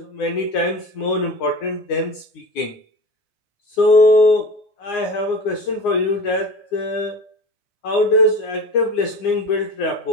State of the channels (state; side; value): late; right; 9.7 ms